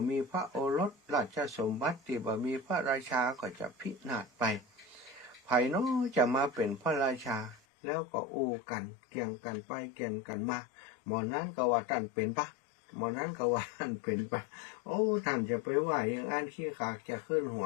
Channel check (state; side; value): drops out; right; at 7.6 s